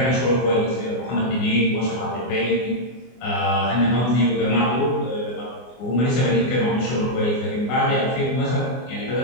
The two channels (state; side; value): late; right; 24 ms